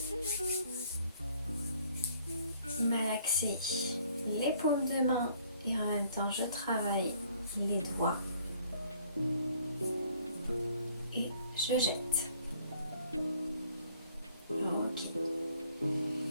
Malaxer les paumes de main et en même temps je travaille les doigts. Et je jette. Ok.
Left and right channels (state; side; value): inverted; both; correlation -0.61